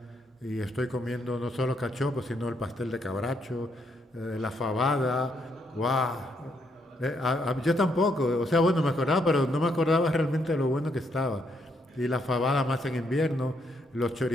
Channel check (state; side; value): normal; both; correlation 0.75